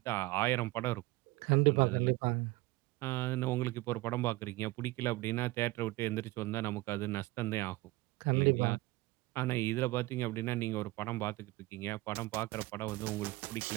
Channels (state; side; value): quieter; left; 20.2 dB